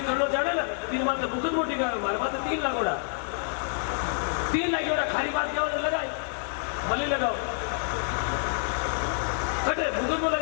करना जाने ना तीन बात बुकत मोटी का हमारे बात 3 लाख उड़ा 3 लाख उड़ा खाली बात क्या लगाई भले लगाओ कटे बुकत में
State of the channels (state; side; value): silent; right; digital silence